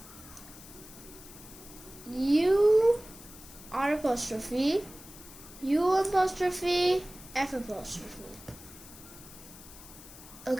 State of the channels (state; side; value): noise; left; hiss, 18 dB below the sound